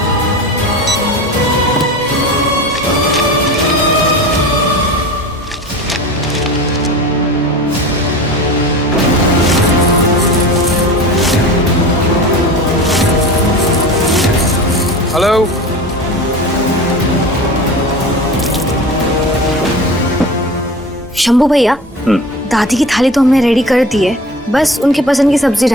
हेलो। शंभू भैया, दादी की थाली तो हमने रेडी कर दी है, बस उनके पसंद की सब्जी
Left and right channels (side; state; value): both; normal; correlation 0.34